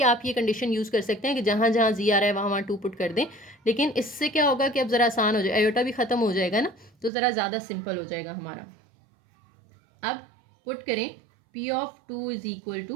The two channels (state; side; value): drops out; left; at 7.1 s